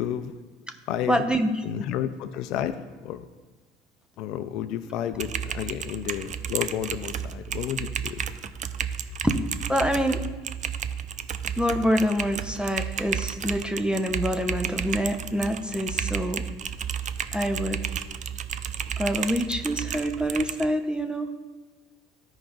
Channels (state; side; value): normal; both; correlation 0.67